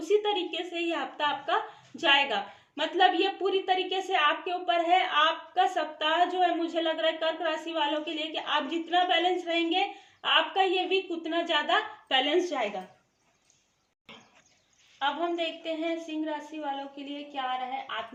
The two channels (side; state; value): both; identical; correlation 1.00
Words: तरीके से ही हफ्ता आपका जाएगा। मतलब ये पूरी तरीके से आपके ऊपर है। आपका सप्ताह जो है मुझे लग रहा है कर्क राशि वालों के लिए कि आप जितना बैलेंस रहेंगे आपका ये वीक उतना ज्यादा बैलेंस जाएगा। अब हम देखते हैं सिंह राशि वालों के लिए क्या आ रहा है।